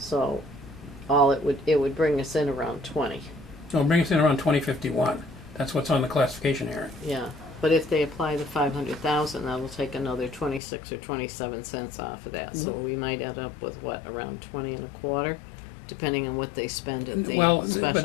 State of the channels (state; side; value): drops out; right; at 10.6 s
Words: it would bring us in around 20. So it'll bring us in around 2051. That's what's on the classification hearing. Yeah, but if they apply the 500,000, that'll take another 26 or 27 cents off of that. So we might end up with around 20 and a quarter, depending on what they spend at the Well,